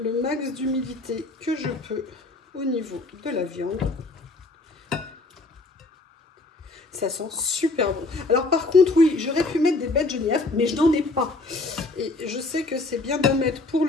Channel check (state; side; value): quieter; right; 3.2 dB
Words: max d'humidité que je peux au niveau de la viande. Ça sent super bon. Alors par contre, oui, j'aurais pu mettre des baies de genièvre, mais je n'en ai pas. Et je sais que c'est bien d'en mettre pour